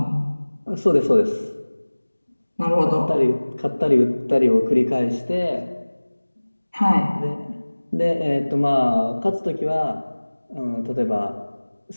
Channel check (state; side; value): inverted; both; correlation -1.00